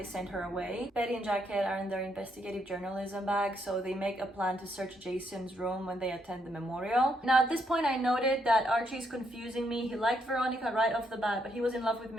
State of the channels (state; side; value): normal; both; correlation 0.75